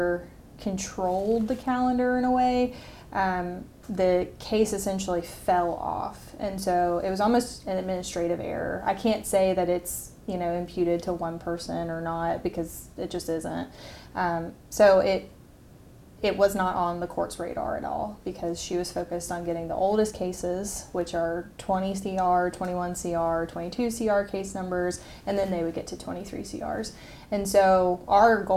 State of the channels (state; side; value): identical; both; correlation 1.00